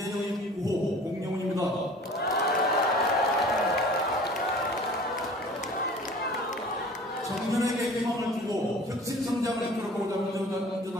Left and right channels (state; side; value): normal; both; correlation 0.45